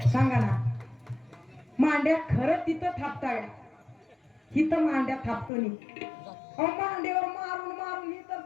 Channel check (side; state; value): right; drops out; at 5.5 s